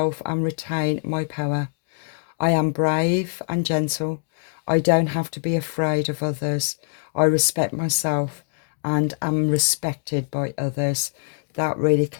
and retain my power. I am brave and gentle. I don't have to be afraid of others. I respect myself and am respected by others. That really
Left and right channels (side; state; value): right; silent; digital silence